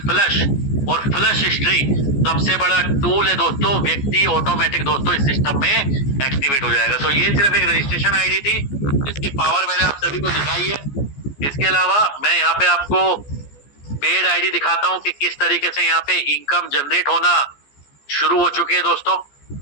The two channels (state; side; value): late; right; 14 ms